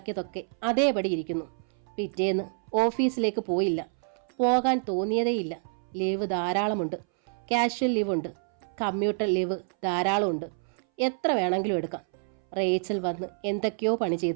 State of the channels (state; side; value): silent; left; 59 dB below the other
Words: അതേപടി ഇരിക്കുന്നു. പിറ്റേന്ന് ഓഫീസിലേക്ക് പോയില്ല. പോകാൻ തോന്നിയതേയില്ല. ലീവ് ധാരാളമുണ്ട്. കാഷ്വൽ ലീവുണ്ട്, കമ്മ്യൂട്ടർ ലീവ് ധാരാളമുണ്ട്. എത്ര വേണമെങ്കിലും എടുക്കാം. റേച്ചൽ വന്ന് എന്തൊക്കെയോ പണി